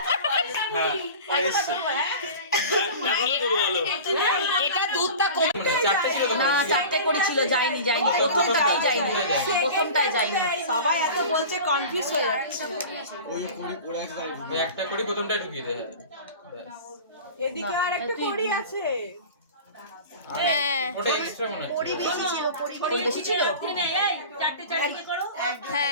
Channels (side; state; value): both; inverted; correlation -0.36